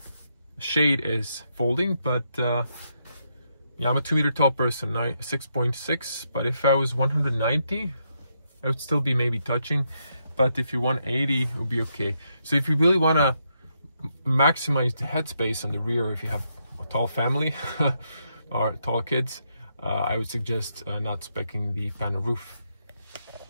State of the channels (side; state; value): both; inverted; correlation -0.79